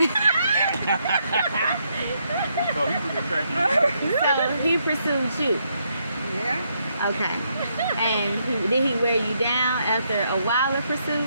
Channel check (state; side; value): inverted; both; correlation -0.77